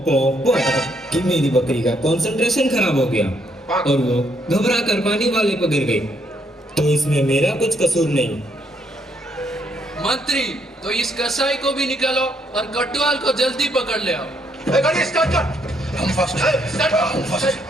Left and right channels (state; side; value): normal; both; correlation 0.72